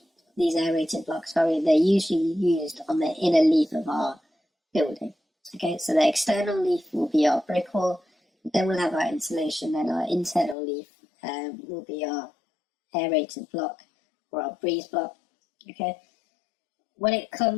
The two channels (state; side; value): drops out; right; at 10.6 s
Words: used on the inner leaf of our building. Okay, so the external leaf will be our brick wall, then we'll have our insulation, and our internal leaf will be our aerated block or our breeze block. Okay, when it